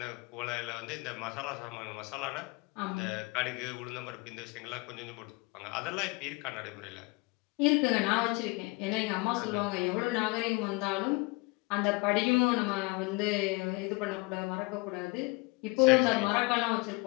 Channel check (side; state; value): right; quieter; 27.1 dB